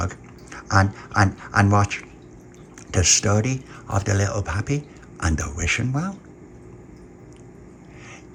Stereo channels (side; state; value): both; identical; correlation 1.00